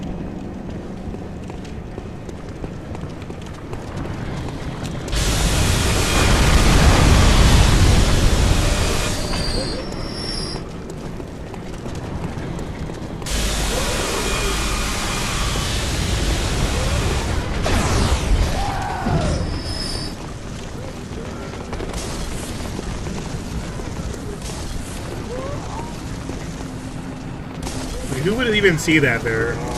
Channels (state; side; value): identical; both; correlation 1.00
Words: Who would even see that there? You know